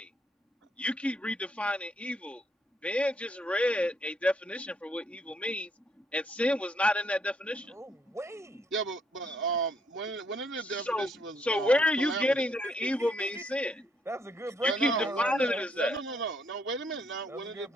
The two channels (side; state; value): both; normal; correlation 0.71